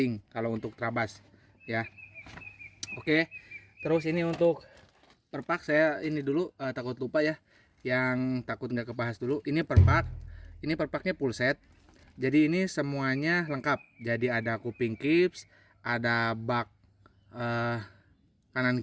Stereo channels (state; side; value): identical; both; correlation 1.00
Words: kalau untuk Trabas ya. Oke, terus ini untuk perpak saya ini dulu, takut lupa ya, yang takut nggak kebahas dulu. Ini perpaknya full set. Jadi ini semuanya lengkap. Jadi ada kuping kips, ada bak kanan